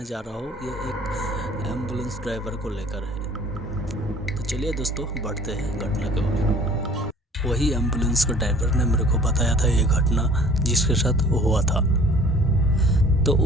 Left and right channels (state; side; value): normal; both; correlation 0.51